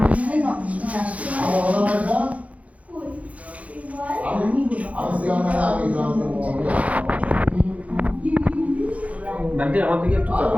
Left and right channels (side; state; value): left; late; 0.067 ms